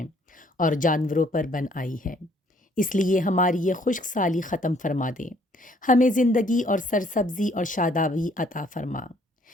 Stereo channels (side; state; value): both; normal; correlation 0.63